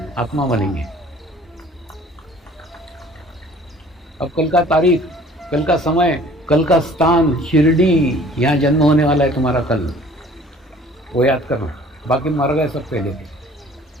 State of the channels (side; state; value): both; normal; correlation 0.52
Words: आत्मा बनेंगे। अब कल का तारीख, कल का समय, कल का स्थान, शिरडी, यहाँ जन्म होने वाला है तुम्हारा कल, वो याद करना। बाकी मर गए सब पहले के।